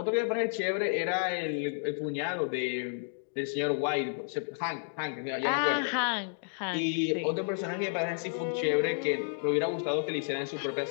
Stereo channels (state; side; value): silent; right; digital silence